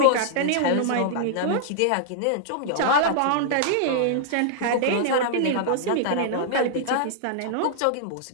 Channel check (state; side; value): different; both; correlation -0.01